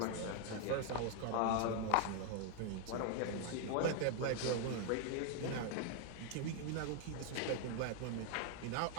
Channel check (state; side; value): different; both; correlation 0.00